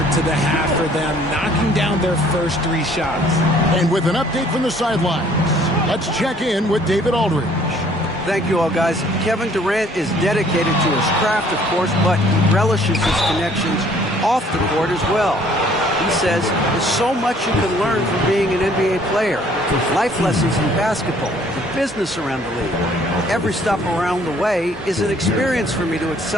to the half for them, knocking down their first 3 shots. And with an update from the sidelines, let's check in with David Aldridge. Thank you all, guys. Kevin Durant is dedicated to his craft, of course, but he relishes his connections off the court as well. He says there's so much you can learn from being an NBA player. Life lessons in basketball, the business around the league. Every stop around the way is an experience for me to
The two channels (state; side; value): normal; both; correlation 0.59